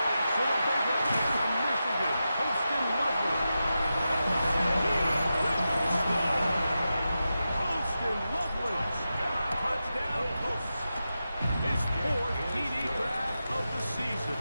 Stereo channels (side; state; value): both; inverted; correlation -0.91